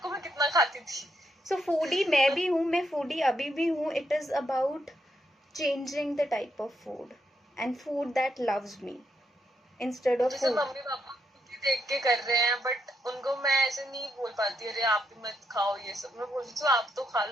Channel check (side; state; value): both; normal; correlation 0.79